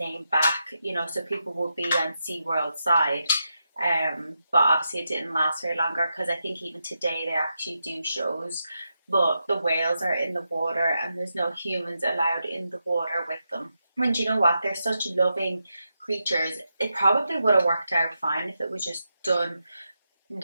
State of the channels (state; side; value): inverted; both; correlation -0.86